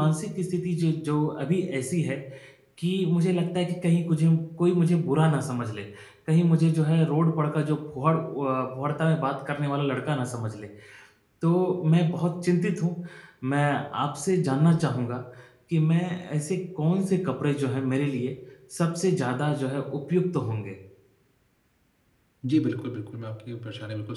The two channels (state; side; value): identical; both; correlation 1.00